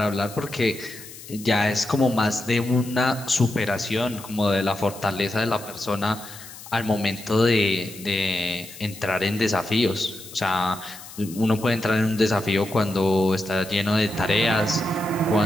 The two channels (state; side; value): noise; left; hiss, 16 dB below the sound